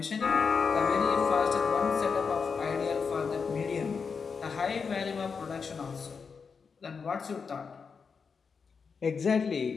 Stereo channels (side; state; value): right; quieter; 5.5 dB